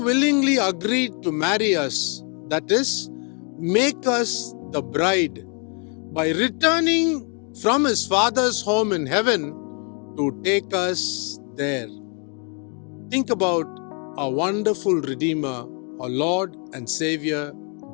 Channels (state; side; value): quieter; right; 36.3 dB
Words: agreed to marry us, that is, make us the bride, by returning from his Father's home in heaven to take us there. Think about our wonderful Redeemer, our Lord and Savior,